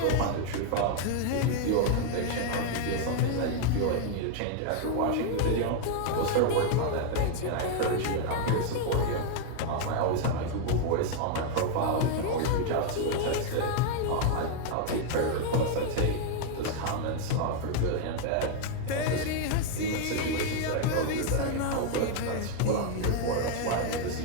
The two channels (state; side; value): different; both; correlation 0.00